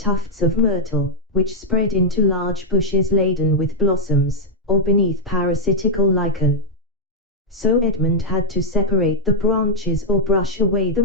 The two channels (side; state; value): both; normal; correlation -0.03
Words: of myrtle, which spread into large bushes laden with blossoms, or beneath parasitical lichen. So Edmund had to separate the branches or brush away the